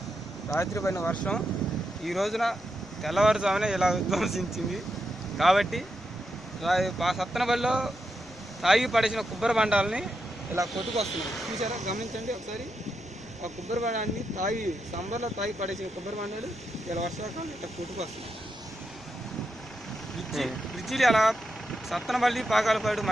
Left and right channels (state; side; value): normal; both; correlation 0.85